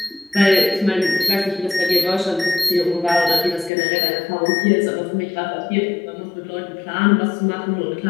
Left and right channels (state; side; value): drops out; right; at 3.7 s